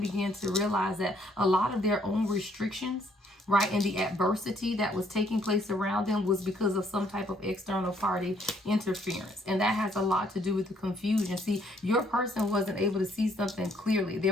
to realize that a lot of their own restrictions, right, and the adversity that was taking place around them was because of some type of external party interference. And that has a lot to do with the confusion. See, your person wasn't able to see something clearly.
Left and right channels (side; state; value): both; normal; correlation 0.67